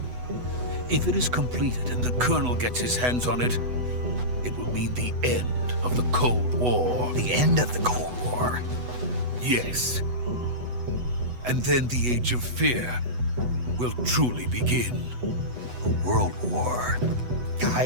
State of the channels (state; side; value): late; left; 8.1 ms